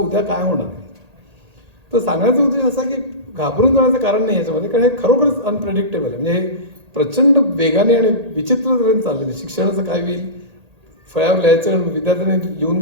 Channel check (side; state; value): left; late; 1.8 ms